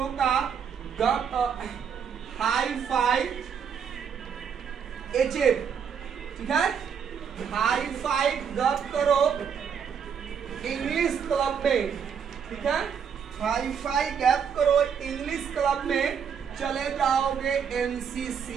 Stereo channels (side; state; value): left; quieter; 7.3 dB